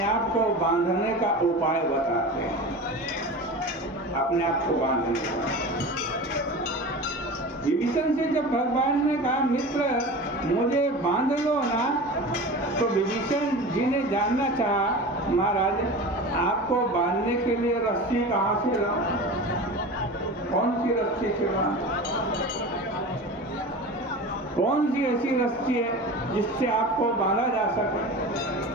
आप को बांधने का उपाय बताते हैं, अपने आप को बांधने का। विभीषण से जब भगवान ने कहा, मित्र मुझे बांध लो ना, तो विभीषण जी ने जानना चाहा, महाराज आपको बांधने के लिए रस्सी कहाँ से लाऊं? कौन सी रस्सी से बांधूं? कौन सी ऐसी रस्सी है जिससे आपको बांधा जा सके?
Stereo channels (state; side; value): normal; both; correlation 0.32